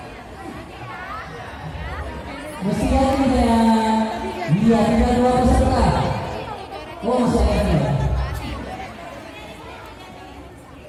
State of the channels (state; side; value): identical; both; correlation 1.00